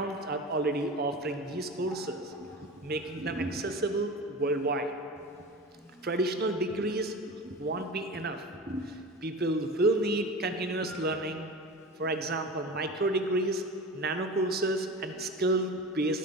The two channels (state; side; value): normal; both; correlation 0.31